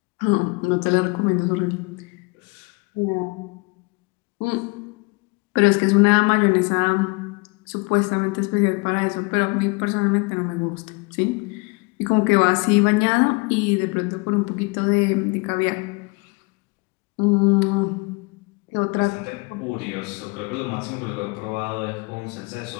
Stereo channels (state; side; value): quieter; right; 27.9 dB